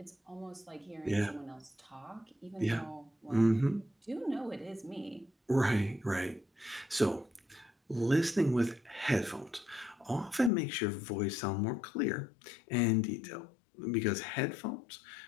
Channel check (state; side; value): drops out; right; at 10.5 s